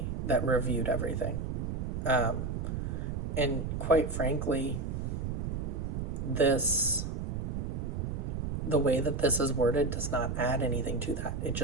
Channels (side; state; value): right; noise; rumble, 3 dB below the sound